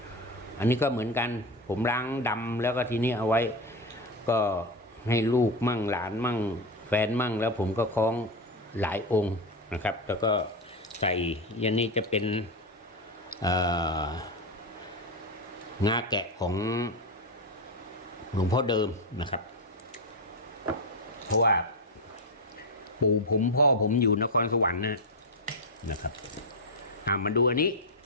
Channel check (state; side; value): normal; both; correlation 0.12